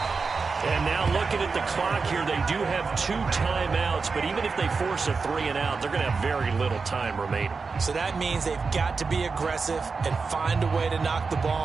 And now looking at the clock here, they do have 2 timeouts, but even if they force a 3 and out, they're going to have very little time remaining. So that means they've got to be aggressive and find a way to knock the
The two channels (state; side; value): quieter; left; 4.7 dB